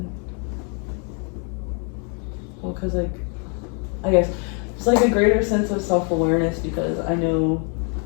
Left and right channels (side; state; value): right; quieter; 38.3 dB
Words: because like I guess it's like a greater sense of self-awareness because I know